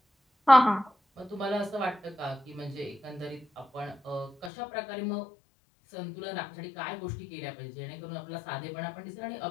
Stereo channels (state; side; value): drops out; right; at 4.5 s